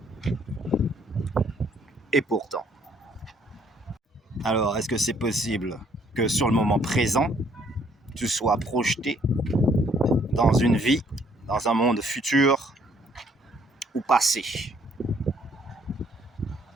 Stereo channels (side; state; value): both; normal; correlation 0.65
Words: Et pourtant. Alors, est-ce que c'est possible que sur le moment présent, tu sois projeté dans une vie, dans un monde futur ou passé?